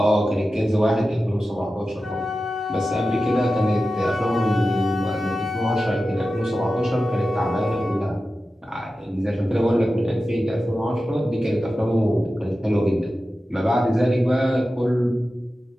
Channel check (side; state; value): both; normal; correlation 0.93